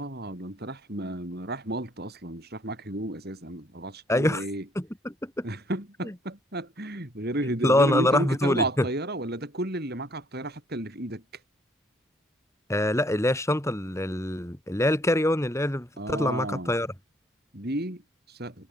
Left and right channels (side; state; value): both; normal; correlation 0.65